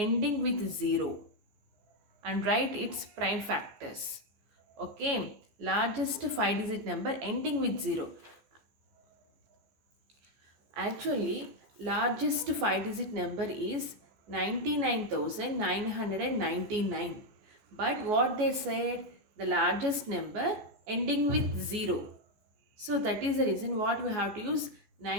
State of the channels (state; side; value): late; left; 14 ms